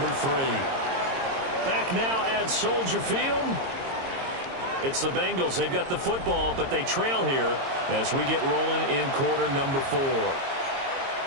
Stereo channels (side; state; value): left; late; 22 ms